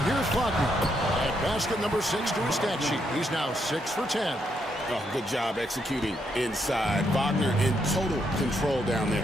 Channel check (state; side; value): normal; both; correlation 0.77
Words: here's Wagner. At basket number 6 to his stat sheet. He's now 6 for 10. Oh, good job executing inside. Wagner in total control down there.